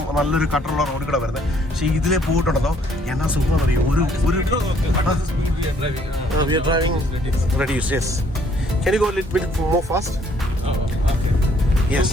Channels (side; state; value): both; normal; correlation 0.64